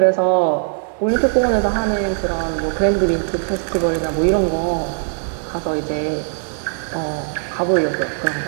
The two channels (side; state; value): left; silent; digital silence